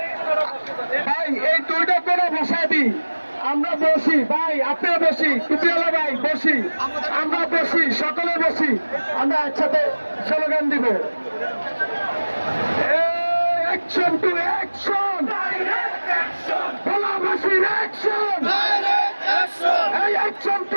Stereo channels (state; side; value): inverted; both; correlation -1.00